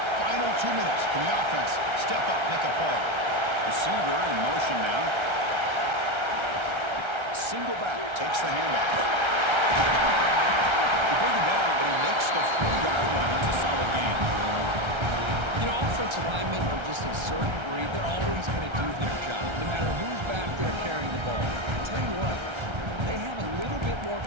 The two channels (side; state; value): left; late; 1.3 ms